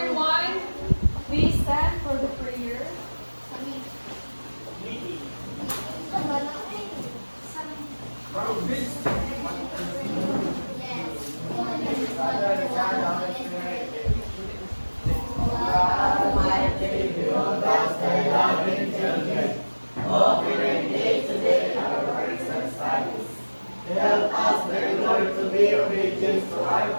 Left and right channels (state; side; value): inverted; both; correlation -1.00